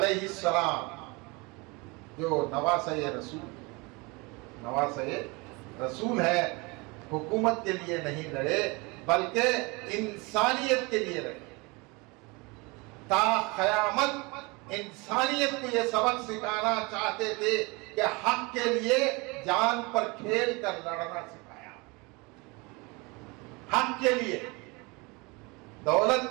السلام جو نواسہ رسول ہے، حکومت کے لیے نہیں لڑے بلکہ انسانیت کے لیے لڑے. تا قیامت انسانیت کو یہ سبق سکھانا چاہتے تھے کہ حق کے لیے جان پر کھیل کر لڑنا سکھایا. حق کے لیے، دولت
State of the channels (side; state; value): left; quieter; 26.7 dB